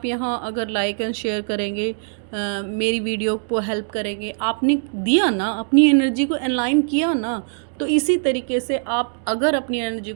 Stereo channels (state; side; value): silent; left; digital silence